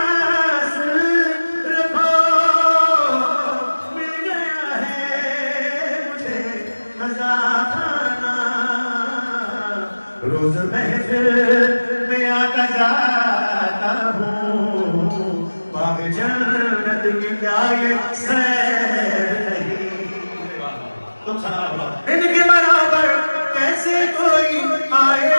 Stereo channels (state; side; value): inverted; both; correlation -1.00